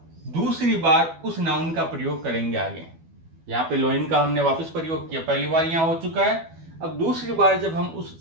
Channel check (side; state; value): left; late; 12 ms